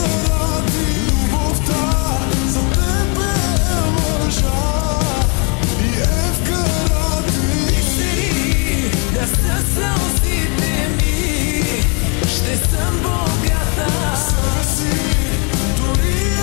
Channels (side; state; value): right; quieter; 35.3 dB